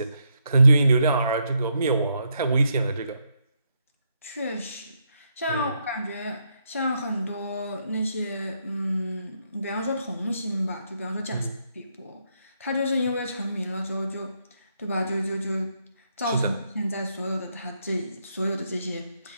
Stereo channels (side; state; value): both; inverted; correlation -0.78